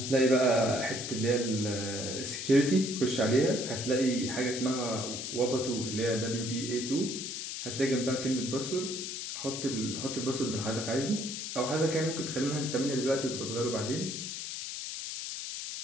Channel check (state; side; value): noise; left; hiss, 5 dB below the sound